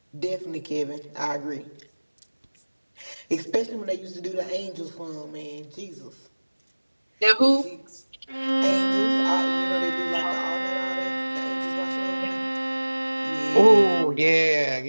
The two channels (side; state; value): both; inverted; correlation -1.00